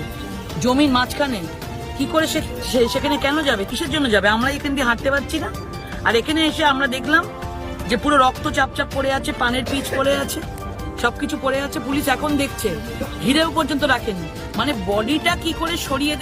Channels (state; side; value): identical; both; correlation 1.00